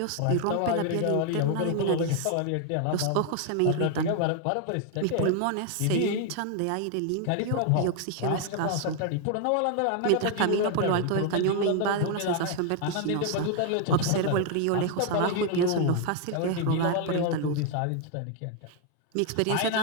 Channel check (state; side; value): different; both; correlation 0.00